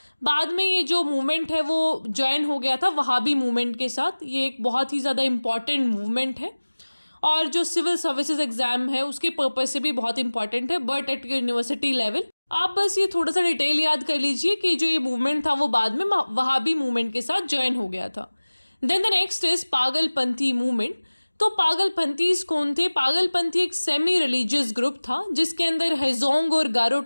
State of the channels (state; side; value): inverted; both; correlation -1.00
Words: बाद में ये जो मूवमेंट है वो ज्वाइन हो गया था वहाबी मूवमेंट के साथ। ये एक बहुत ही ज़्यादा इम्पॉर्टेंट मूवमेंट है और जो सिविल सर्विसेज एग्जाम है उसके पर्पज से भी बहुत इंपॉर्टेंट है, बट एट यूनिवर्सिटी लेवल। आप बस ये थोड़ा सा डिटेल याद कर लीजिए कि जो ये मूवमेंट था वो बाद में वहाबी मूवमेंट के साथ ज्वाइन हो गया था। Then the next is Pagalpanthi movement. तो पागलपंथीज कौन थे? पागलपंथी एक सेमी रिलीजियस ग्रुप था जिसके अंदर हेजोंग और गारो